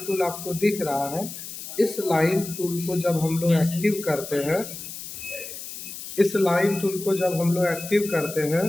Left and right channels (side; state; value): left; noise; hiss, 10 dB below the sound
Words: टूल आपको दिख रहा है, इस लाइन टूल को जब हम लोग एक्टिव करते हैं, इस लाइन टूल को जब हम लोग एक्टिव करते हैं